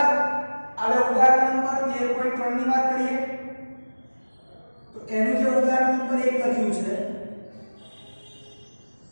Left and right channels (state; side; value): inverted; both; correlation -1.00